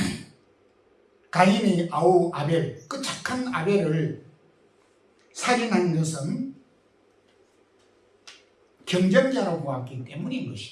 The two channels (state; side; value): identical; both; correlation 1.00